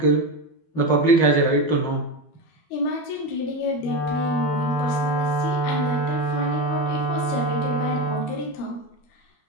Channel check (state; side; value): late; right; 12 ms